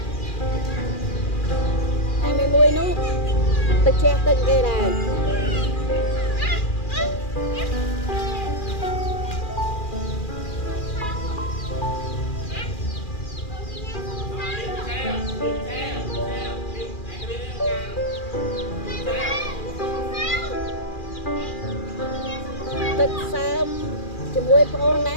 Hai mươi mùi nú, tự che từng cái này. Tức sớm cho mùi phong ná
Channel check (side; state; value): right; late; 2.4 ms